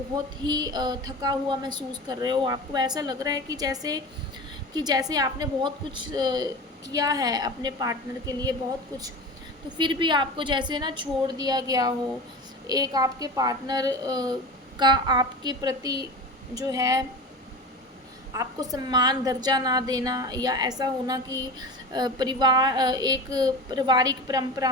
ही थका हुआ महसूस कर रहे हो। आपको ऐसा लग रहा है कि जैसे आपने बहुत कुछ किया है अपने पार्टनर के लिए, बहुत कुछ, तो फिर भी आपको जैसे ना छोड़ दिया गया हो। एक आपके पार्टनर का आपके प्रति जो है आपको सम्मान, दर्जा ना देना, या ऐसा होना कि एक पारिवारिक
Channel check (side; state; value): both; normal; correlation 0.31